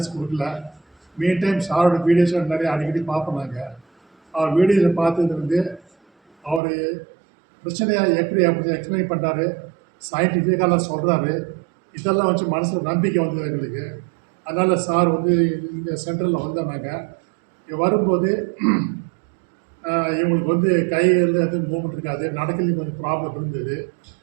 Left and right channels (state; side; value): drops out; left; at 6.6 s